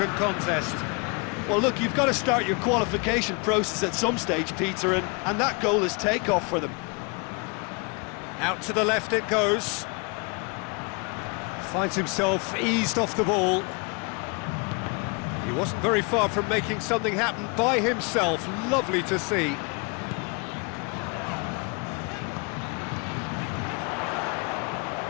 contest. Well, look, you've got to start your qualification process at some stage, Peter, and that goal is takeoff for them. Out to the left it goes. Finds himself eased off the ball. He wasn't very far from making something happen by himself. Lovely to see.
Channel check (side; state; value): right; quieter; 32.0 dB